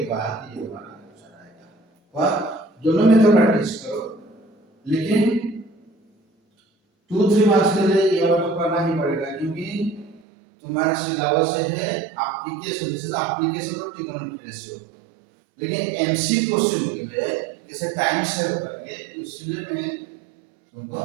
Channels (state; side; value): drops out; left; at 10.2 s